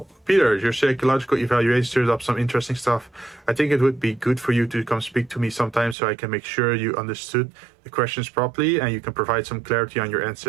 Peter, your psychological evaluation stirs up some interesting stuff. I think it would be good for you to come speak to me sometime so I can make sure you understood the questions properly and you can provide some clarity on your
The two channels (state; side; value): drops out; left; at 6.0 s